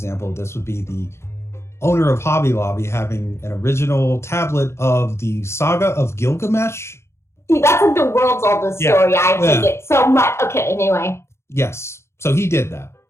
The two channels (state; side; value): late; right; 0.13 ms